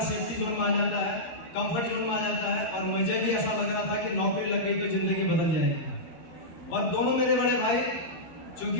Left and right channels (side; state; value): right; late; 13 ms